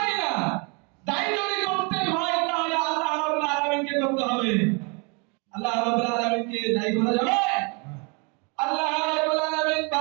না। দায়ী যদি করতে হয় তাহলে আল্লাহ রাব্বুল আলামিনকে করতে হবে। আল্লাহ রাব্বুল আলামিনকে দায়ী করা যাবে? আল্লাহ রাব্বুল আলামিন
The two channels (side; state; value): left; quieter; 32.4 dB